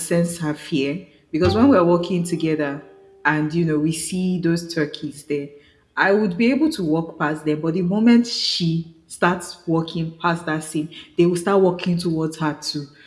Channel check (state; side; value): identical; both; correlation 1.00